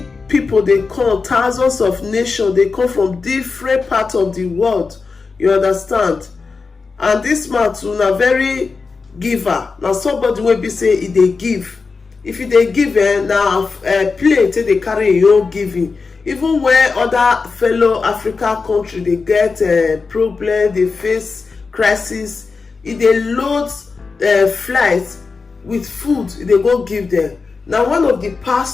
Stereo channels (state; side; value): quieter; right; 4.5 dB